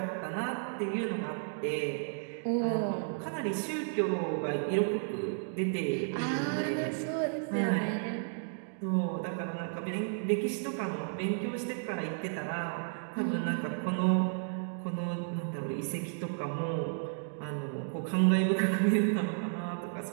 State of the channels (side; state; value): left; silent; digital silence